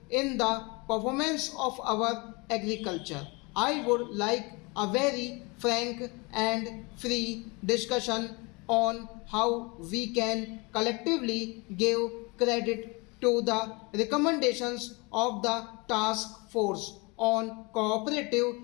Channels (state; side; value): quieter; right; 27.7 dB